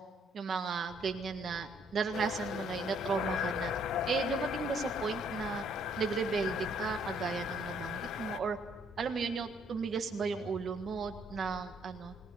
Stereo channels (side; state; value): both; normal; correlation 0.66